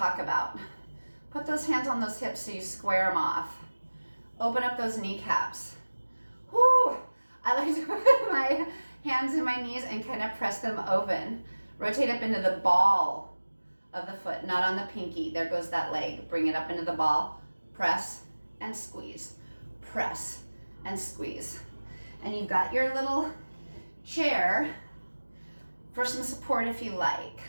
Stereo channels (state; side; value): inverted; both; correlation -1.00